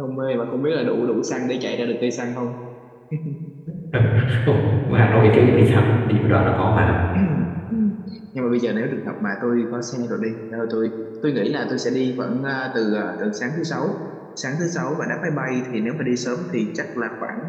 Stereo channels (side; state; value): both; identical; correlation 1.00